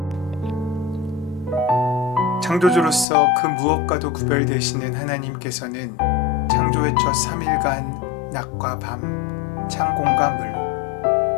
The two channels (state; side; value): drops out; right; at 3.1 s